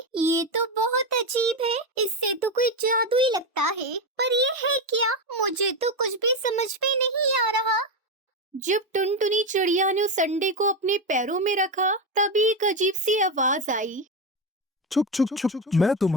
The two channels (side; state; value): both; normal; correlation 0.12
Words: ये तो बहुत अजीब है। इससे तो कोई जादू ही लगता है। पर ये है क्या? मुझे तो कुछ भी समझ में नहीं आ रहा। जब टुनटुनी चिड़िया ने उस अंडे को अपने पैरों में रखा तभी एक अजीब सी आवाज आई। छुप छुप छुप, मैं